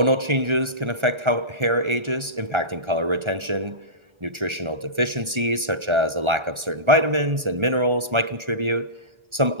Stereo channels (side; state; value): left; late; 1.3 ms